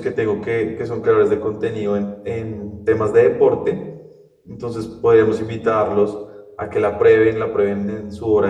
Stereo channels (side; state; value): both; identical; correlation 1.00